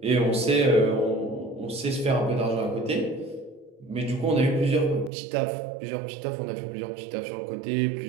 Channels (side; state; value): left; drops out; at 5.1 s